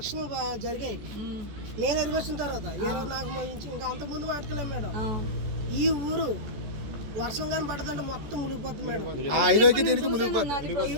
జరిగాయి. నేను ఎరుగొచ్చిన తర్వాత 24 ఇంకా అంతకుముందు మాట్లాడలేము మేడం. ఈ ఊరు వర్షం కానీ పడుతుంటే మొత్తం మునిగిపోతుంది మేడం.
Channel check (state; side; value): late; left; 14 ms